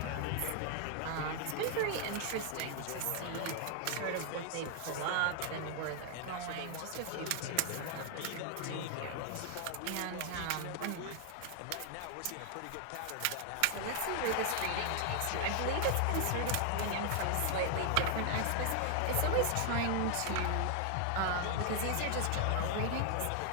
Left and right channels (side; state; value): both; different; correlation 0.00